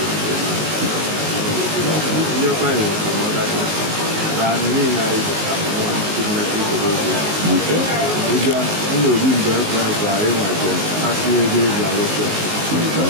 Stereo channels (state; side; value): late; left; 19 ms